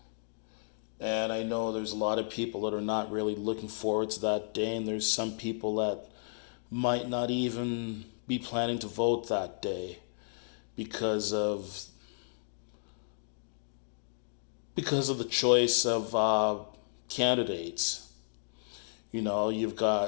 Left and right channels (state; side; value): silent; right; digital silence